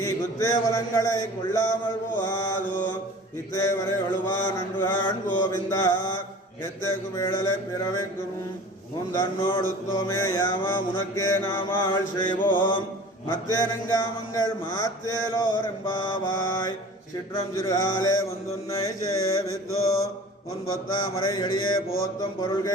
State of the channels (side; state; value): both; normal; correlation 0.41